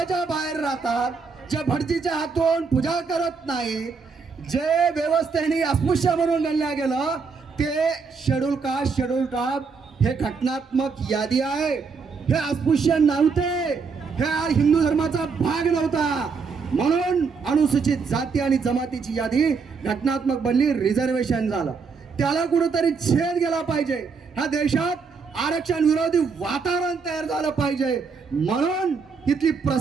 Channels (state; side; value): quieter; left; 5.1 dB